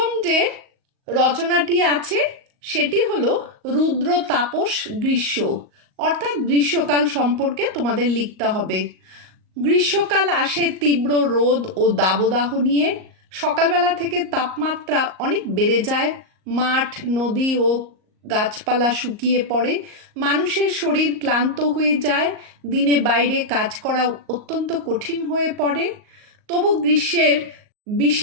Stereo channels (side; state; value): left; late; 38 ms